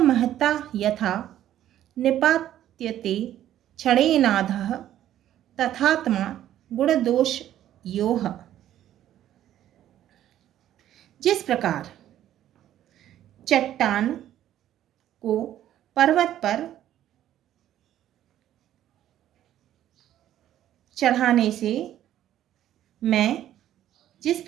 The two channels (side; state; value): left; quieter; 12.0 dB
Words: महता यथा निपात्यते क्षणेनाधः तथात्मा गुणदोष योह। जिस प्रकार चट्टान को पर्वत पर चढ़ाने से जिस